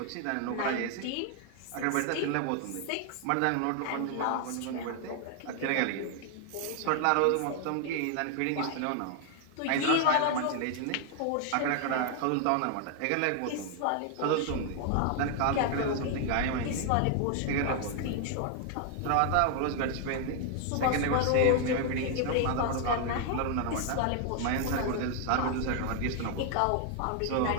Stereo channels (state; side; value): different; both; correlation 0.00